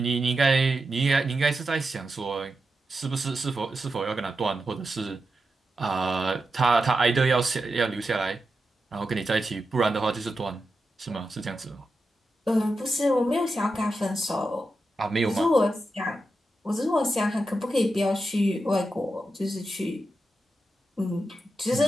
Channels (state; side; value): normal; both; correlation 0.89